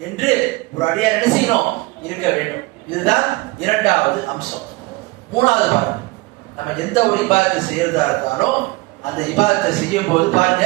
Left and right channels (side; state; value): left; quieter; 22.5 dB